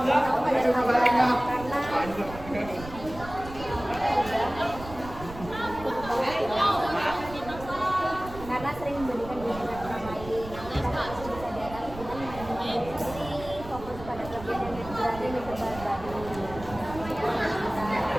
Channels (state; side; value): noise; right; rumble, 13 dB below the sound